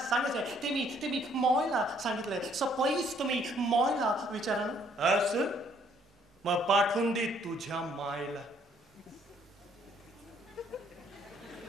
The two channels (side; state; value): both; normal; correlation 0.65